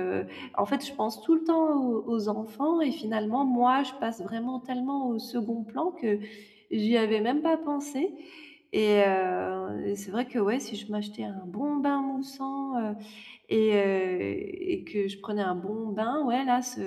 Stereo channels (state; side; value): identical; both; correlation 1.00